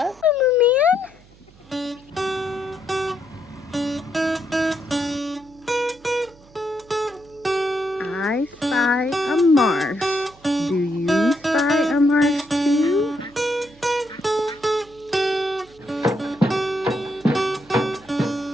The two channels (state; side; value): noise; right; hum, 26 dB below the sound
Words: I spy a marsh. Do you spy a marsh too?